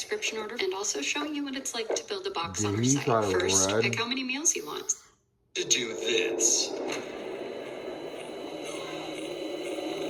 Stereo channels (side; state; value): both; identical; correlation 1.00